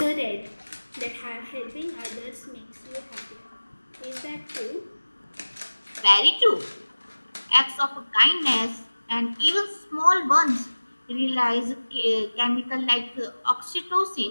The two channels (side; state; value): both; inverted; correlation -1.00